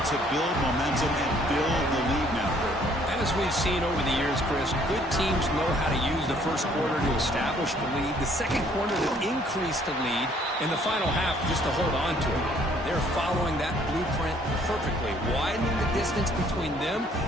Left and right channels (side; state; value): both; normal; correlation 0.62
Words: to build momentum and build the lead now. As we've seen over the years, Chris, good teams know how to use the first quarter to establish the lead, the second quarter to increase the lead, and the final half just to hold on to it. They're following that blueprint perfectly, widening the distance between them